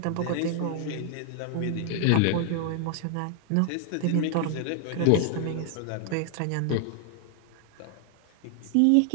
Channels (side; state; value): both; different; correlation 0.00